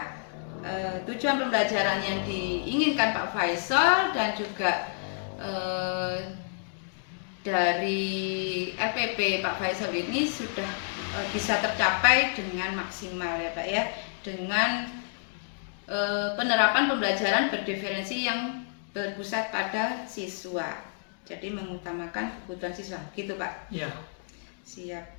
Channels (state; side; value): silent; right; digital silence